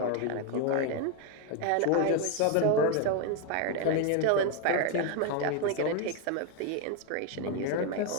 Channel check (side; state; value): both; different; correlation 0.01